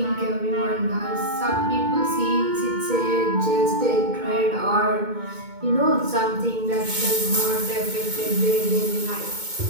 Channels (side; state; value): left; late; 2.2 ms